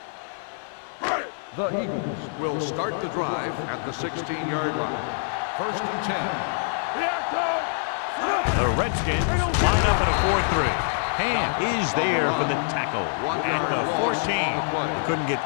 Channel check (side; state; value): right; silent; digital silence